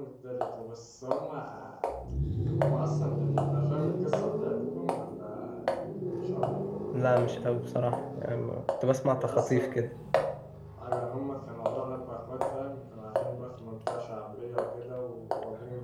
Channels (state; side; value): identical; both; correlation 1.00